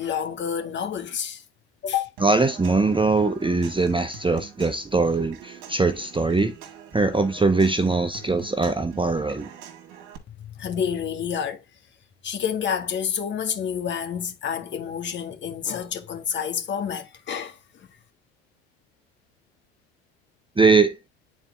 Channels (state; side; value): normal; both; correlation 0.55